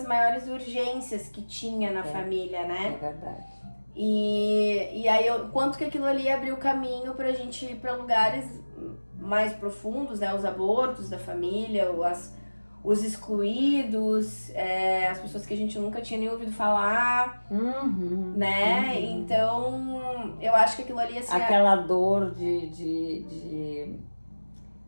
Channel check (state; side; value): inverted; both; correlation -1.00